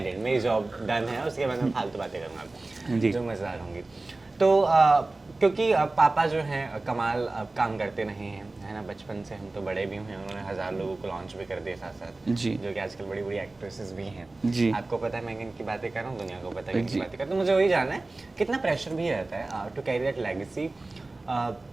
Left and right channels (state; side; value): quieter; left; 3.1 dB